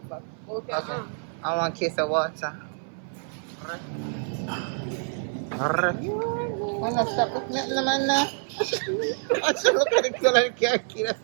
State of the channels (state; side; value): silent; left; 58 dB below the other